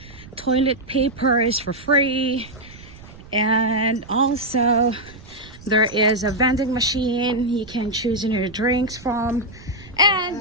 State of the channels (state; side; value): noise; right; rumble, 19 dB below the sound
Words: Toilet paper is for free, and also there is a vending machine you can choose your drinks from.